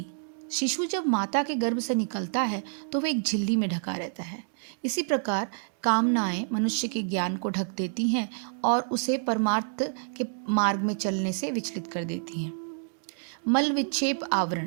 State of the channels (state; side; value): silent; left; digital silence